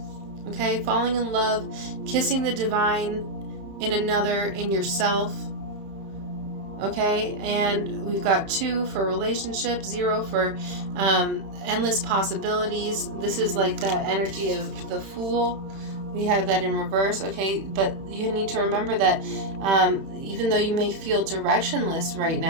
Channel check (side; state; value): left; late; 31 ms